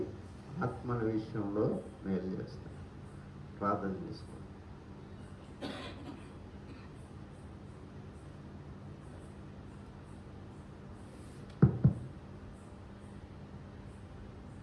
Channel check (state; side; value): identical; both; correlation 1.00